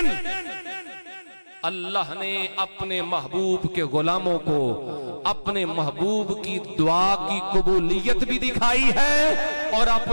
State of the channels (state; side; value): inverted; both; correlation -1.00